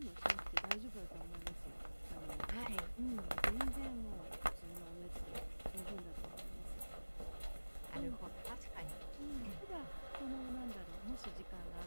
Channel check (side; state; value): both; inverted; correlation -1.00